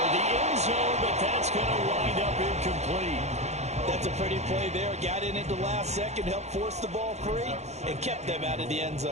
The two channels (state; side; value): late; left; 0.32 ms